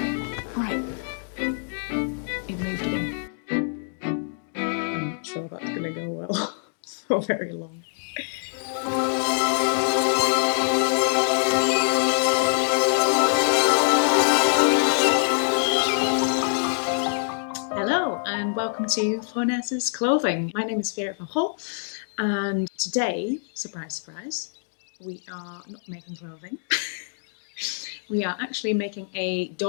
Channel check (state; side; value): silent; right; digital silence